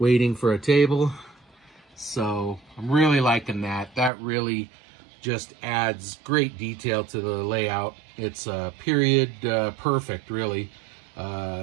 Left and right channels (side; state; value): left; drops out; at 4.1 s